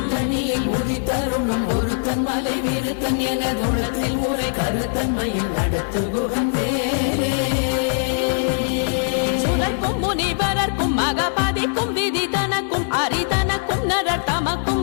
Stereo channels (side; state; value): right; silent; digital silence